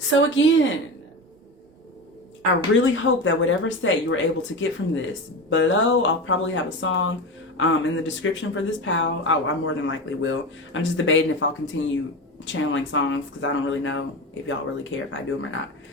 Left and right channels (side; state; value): both; normal; correlation 0.23